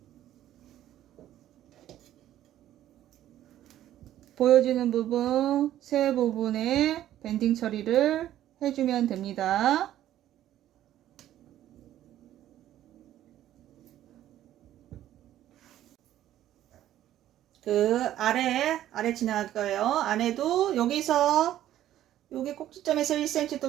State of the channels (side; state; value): left; quieter; 12.6 dB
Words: 보여지는 부분, 세 부분에 밴딩 처리를 해주면 됩니다. 그 아래 지나갈 거예요. 안에도 여기서 여기 꼭지점에서 1cm 또